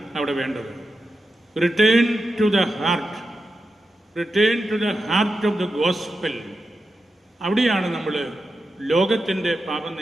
അവിടെ വേണ്ടത്. Return to the heart, return to the heart of the gospel. അവിടെയാണ് നമ്മൾ ലോകത്തിൻ്റെ പാപം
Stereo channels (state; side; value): normal; both; correlation 0.89